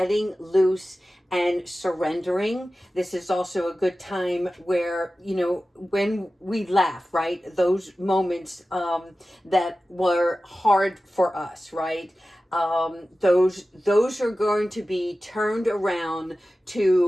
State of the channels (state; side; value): normal; both; correlation 0.95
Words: loose and surrendering. This is also a good time where, when we laugh, right? Those moments that were hard for us, right? Those are going to be turned around